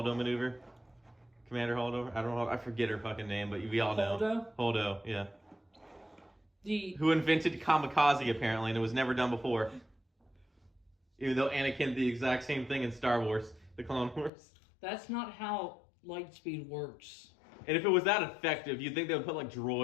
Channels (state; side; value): drops out; right; at 14.3 s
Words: maneuver? Commander Holdo? I don't know. I forget her fucking name, but we all know. Holdo, yeah. Who invented kamikaze apparently, and it was never done before. Even though Anakin did the exact same thing in Star Wars, the Clone Wars. That's not how light speed works. And if it was that effective, you'd think they would put like